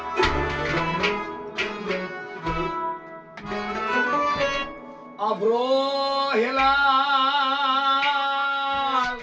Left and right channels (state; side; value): identical; both; correlation 1.00